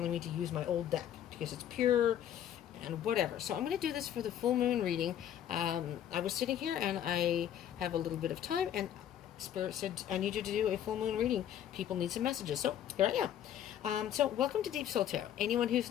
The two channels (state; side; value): quieter; right; 10.4 dB